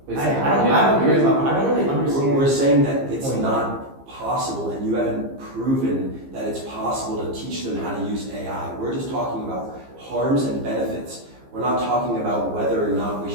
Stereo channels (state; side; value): late; left; 15 ms